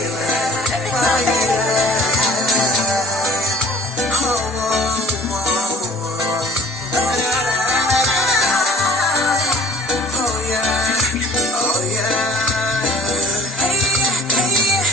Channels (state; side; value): normal; both; correlation 0.52